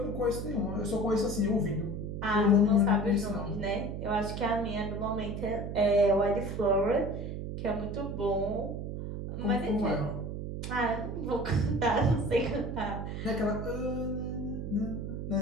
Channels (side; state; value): right; noise; hum, 5 dB below the sound